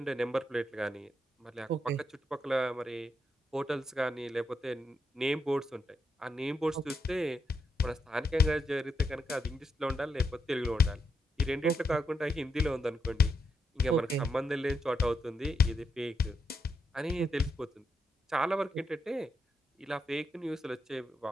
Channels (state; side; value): normal; both; correlation 0.81